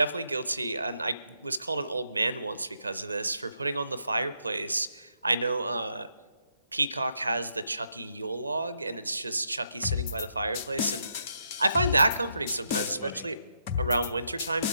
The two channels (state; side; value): inverted; both; correlation -0.79